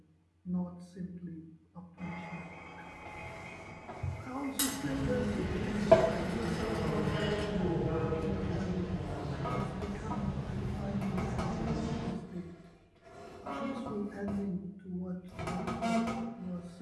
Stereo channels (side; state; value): both; identical; correlation 1.00